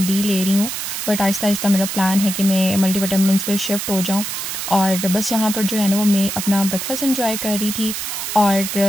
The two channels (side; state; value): right; noise; hiss, 4 dB below the sound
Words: डी ले रही हूँ, बट आहिस्ता आहिस्ता मेरा प्लान है कि मैं मल्टीविटामिन्स पे शिफ्ट हो जाऊँ। और बस यहाँ पर जो है ना वो मैं अपना ब्रेकफास्ट एंजॉय कर रही थी।